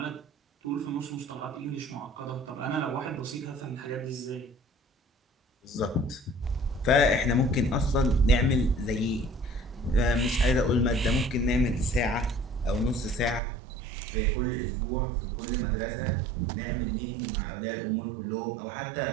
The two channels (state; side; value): drops out; left; at 13.4 s